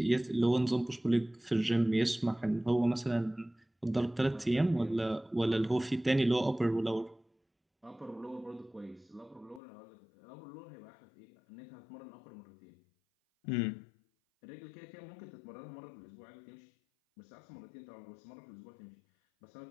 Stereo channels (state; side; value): drops out; right; at 9.6 s